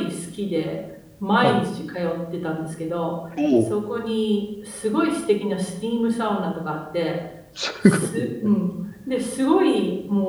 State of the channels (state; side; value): identical; both; correlation 1.00